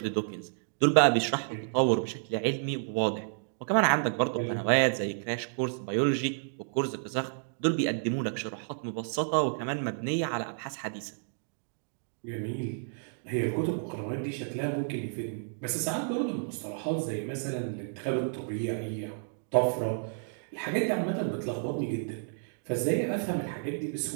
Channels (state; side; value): silent; left; digital silence